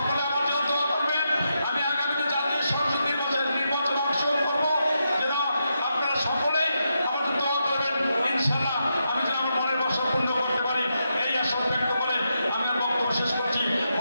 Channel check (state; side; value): inverted; both; correlation -0.84